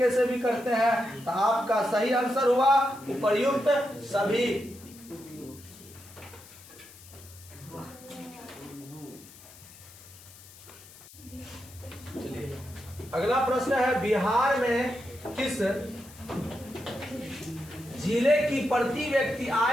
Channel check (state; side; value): noise; left; hiss, 20 dB below the sound